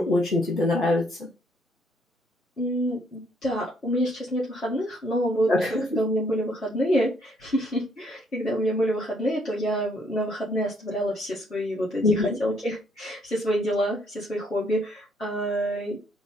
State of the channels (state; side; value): normal; both; correlation 0.68